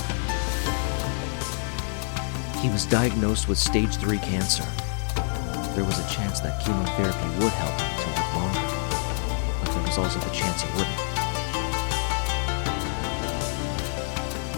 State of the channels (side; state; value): right; silent; digital silence